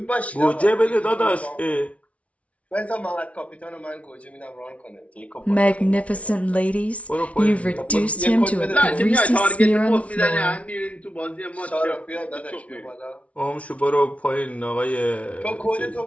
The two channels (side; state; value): right; late; 0.064 ms